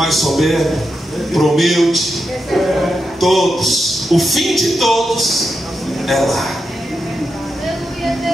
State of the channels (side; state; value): both; normal; correlation 0.87